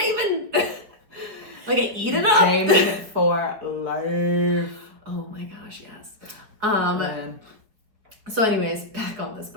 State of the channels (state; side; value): late; left; 4.7 ms